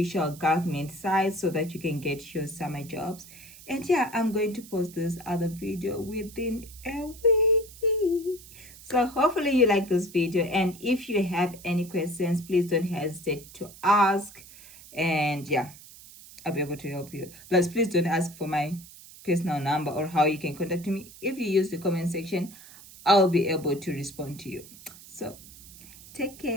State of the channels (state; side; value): noise; right; hiss, 19 dB below the sound